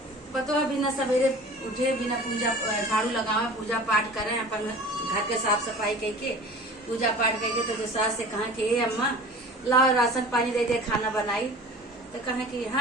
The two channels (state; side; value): normal; both; correlation 0.41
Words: बतवा बिना सवेरे उठे, बिना पूजा झाड़ू लगावे, पूजा पाठ करे, अपन घर के साफ सफाई करके पूजा पाठ करके तो जो सास से कहा कि ए अम्मा लाओ राशन पानी दे दे, खाना बनाई, तो कहे कि